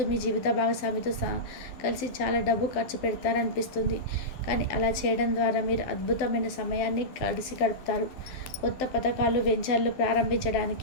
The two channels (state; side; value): late; right; 12 ms